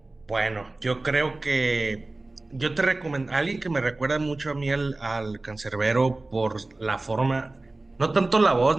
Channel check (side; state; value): left; quieter; 3.0 dB